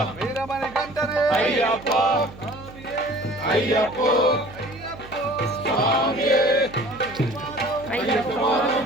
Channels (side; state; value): right; noise; hum, 18 dB below the sound